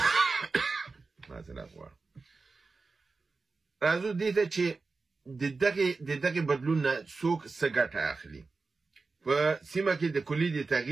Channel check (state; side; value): quieter; left; 4.1 dB